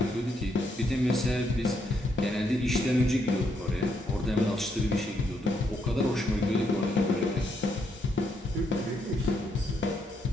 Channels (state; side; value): normal; both; correlation 0.75